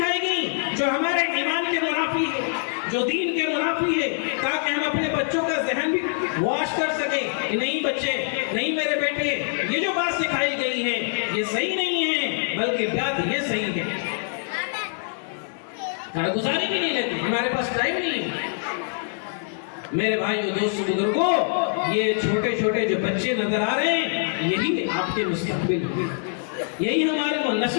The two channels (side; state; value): right; silent; 62 dB below the other